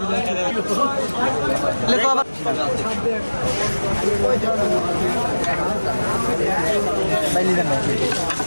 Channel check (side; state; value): both; inverted; correlation -1.00